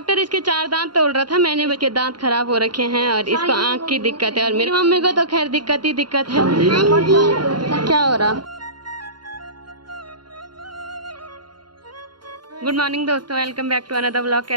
इसके 4 दांत तोड़ रहा था। मैंने इसके दांत खराब हो रखे हैं और इसको आंख की दिक्कत है। और मेरी मम्मी को तो खैर दिक्कत ही दिक्कत है। क्या हो रहा? गुड मॉर्निंग दोस्तों, welcome back to another vlog.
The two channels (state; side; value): late; left; 0.71 ms